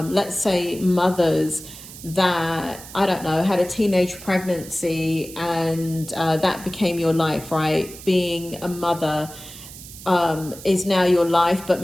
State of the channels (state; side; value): noise; right; hiss, 15 dB below the sound